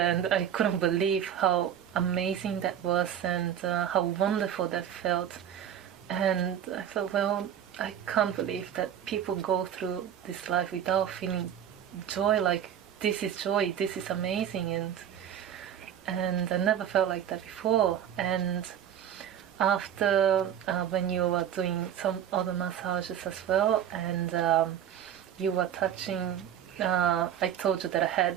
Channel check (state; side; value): quieter; left; 9.8 dB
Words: and I couldn't believe how amazing that was, and how wonderful that felt. And I thought, well, I can't believe that people go through this life without feeling joy. Like, this is joy, this is amazing. And I never felt like that before. And after, when you were doing some other massages as well, and you were touching, I told you that I